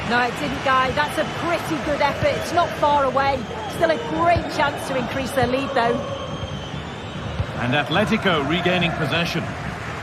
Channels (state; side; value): identical; both; correlation 1.00